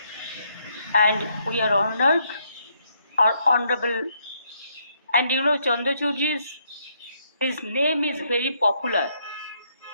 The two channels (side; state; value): both; inverted; correlation -0.73